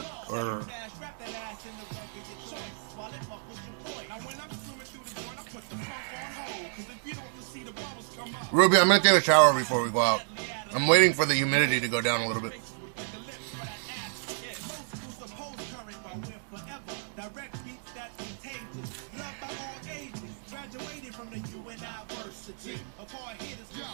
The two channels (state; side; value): silent; left; 57 dB below the other